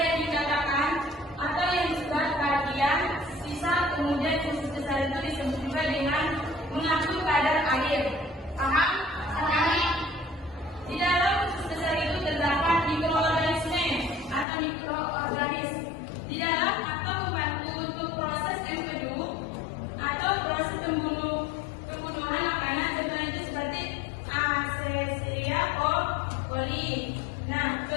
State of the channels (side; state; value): right; drops out; at 14.5 s